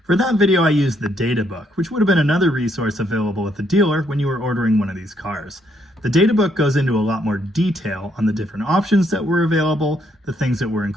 For that video, I used the data book, which would have been another resource available at the dealer when you were ordering one of these cars. The data book goes into a lot more detail on the different options that were available, the things that were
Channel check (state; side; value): normal; both; correlation 0.73